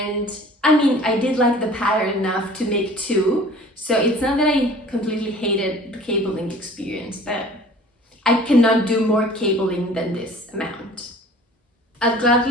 I mean, I did like the pattern enough to make two, so it's not that I completely hated the cabling experience, but I cannot do more cabling than this amount. I'll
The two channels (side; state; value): both; normal; correlation 0.47